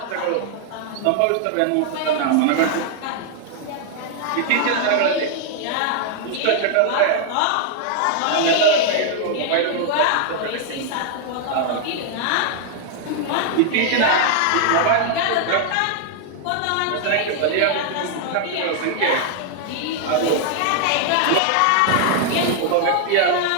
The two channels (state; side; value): different; both; correlation 0.00